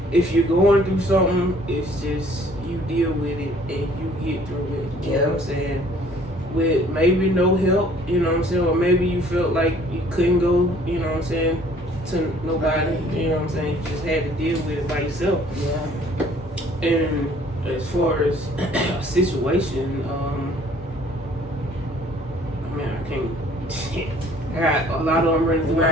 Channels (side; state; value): both; normal; correlation 0.57